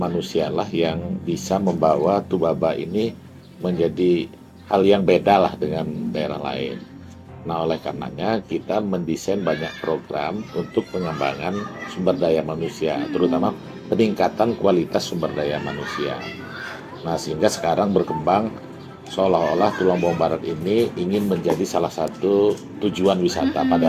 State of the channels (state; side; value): identical; both; correlation 1.00